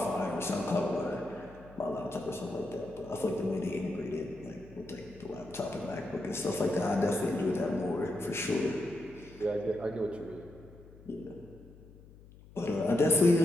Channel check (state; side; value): noise; left; hum, 21 dB below the sound